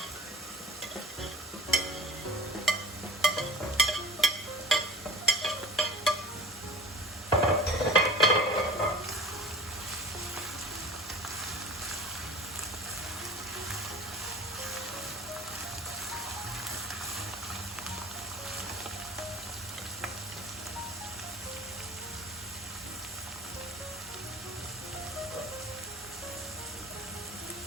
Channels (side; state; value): both; normal; correlation 0.40